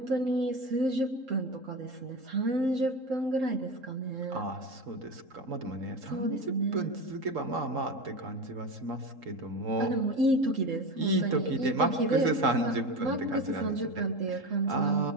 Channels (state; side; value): late; left; 3.8 ms